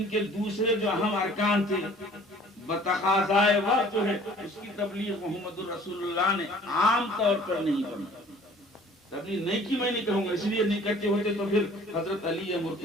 کے دوسرے جو اہم ارکان تھے بتقاضائے وقت جو ہے اس کی تبلیغ محمد الرسول اللہ نے عام طور پر نہیں کرنا۔ تبلیغ نہیں کی میں نہیں کہوں گا، اس لیے نہیں کرتے ہوتے تو پھر حضرت علی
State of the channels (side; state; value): both; normal; correlation 0.51